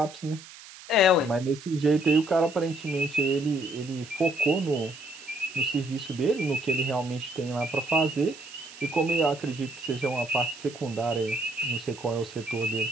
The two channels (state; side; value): noise; right; hiss, 17 dB below the sound